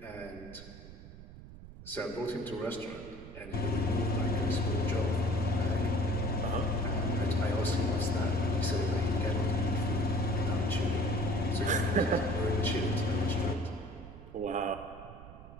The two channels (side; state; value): right; noise; rumble, 16 dB below the sound